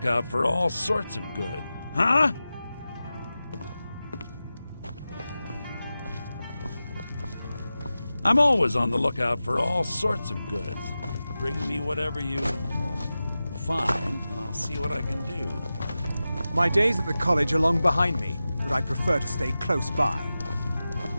for all sorts of good. Huh? I'm always on the lookout for all sorts of goods. Bring me whatever you find, and I'll see what I can do. My days at the college are long behind me. but I prefer to stay close by.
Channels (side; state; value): both; inverted; correlation -0.94